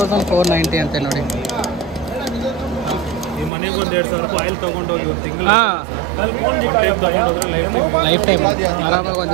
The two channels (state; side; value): drops out; left; at 3.5 s